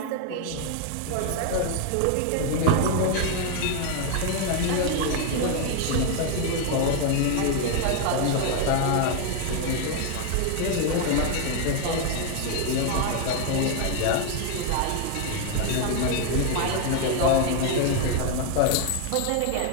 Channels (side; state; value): both; different; correlation 0.01